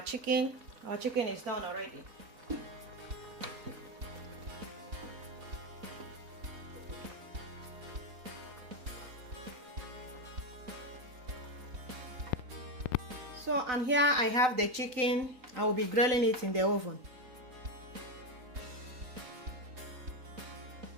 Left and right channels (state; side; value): late; left; 4.0 ms